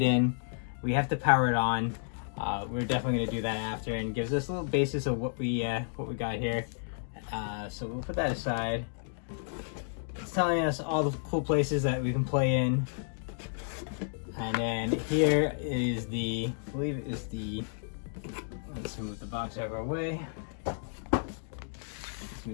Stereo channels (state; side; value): silent; right; digital silence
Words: in. We have to power it on. We're definitely gonna do that after, and gives us a little basis of what we got here. So we'll put that aside. It's telling us all the cool places that we can play in. And then here is the, I believe it is the, let's move the box out of our way. Let's